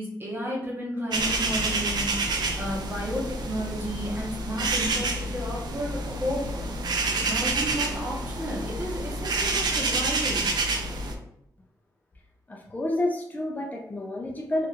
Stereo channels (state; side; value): normal; both; correlation 0.33